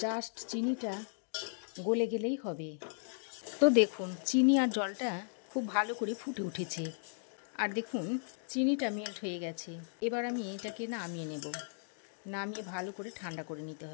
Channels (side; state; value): right; silent; digital silence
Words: জাস্ট চিনিটা গলে গেলেই হবে। তো দেখুন চিনি আর জলটা খুব ভালো করে ফুটে উঠেছে, আর দেখুন চিনিটা মেল্ট হয়ে গেছে। এবার আমি এটাকে নামিয়ে নেব। নামিয়ে ভালো করে ঠান্ডা করে নিতে